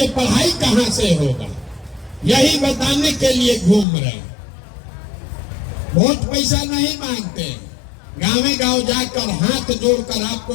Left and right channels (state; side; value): drops out; right; at 3.9 s